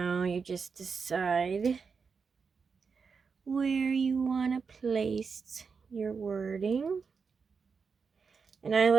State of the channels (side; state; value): left; quieter; 5.4 dB